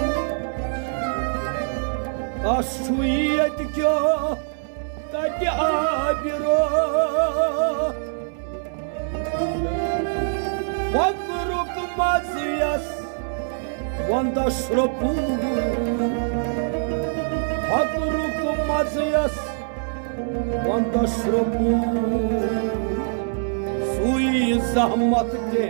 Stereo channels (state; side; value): silent; left; 59 dB below the other